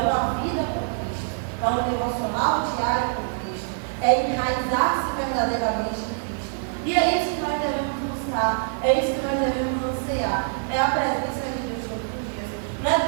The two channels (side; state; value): left; silent; digital silence